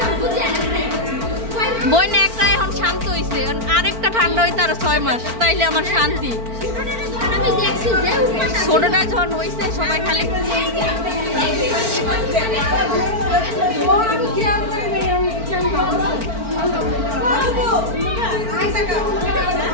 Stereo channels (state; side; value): late; left; 4.4 ms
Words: বই না একটা এখন শান্ত হইছে, আরেকটা ঠান্ডা হইতে আরো 6 মাস, তাইলে আমার শান্তি। ছোটটা যখন হয়েছে সবাই খালি